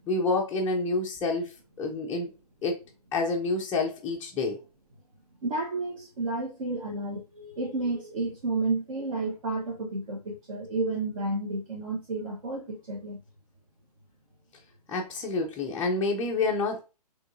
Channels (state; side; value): normal; both; correlation -0.18